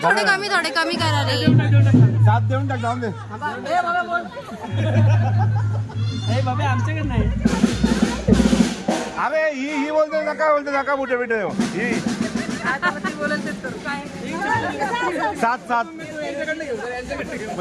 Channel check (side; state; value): both; identical; correlation 1.00